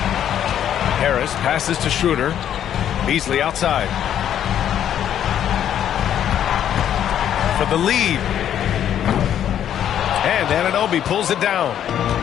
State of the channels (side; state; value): right; quieter; 10.1 dB